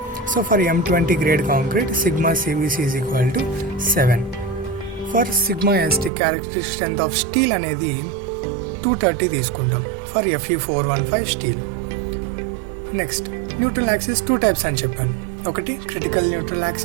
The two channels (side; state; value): left; drops out; at 6.1 s